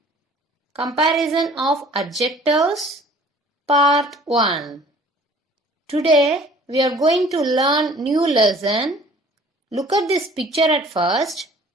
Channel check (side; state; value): both; normal; correlation 0.51